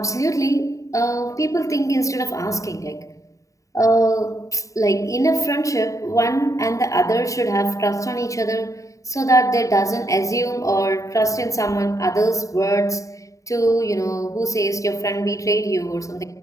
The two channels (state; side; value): late; right; 0.16 ms